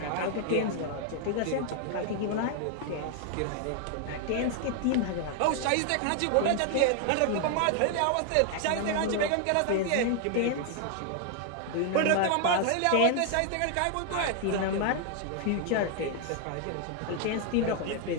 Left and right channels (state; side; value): different; both; correlation 0.00